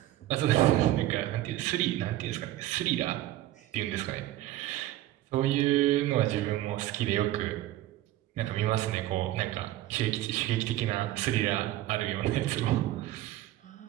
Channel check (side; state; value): left; quieter; 14.6 dB